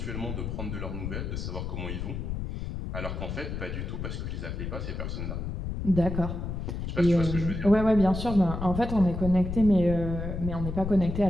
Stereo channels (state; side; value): noise; left; rumble, 4 dB below the sound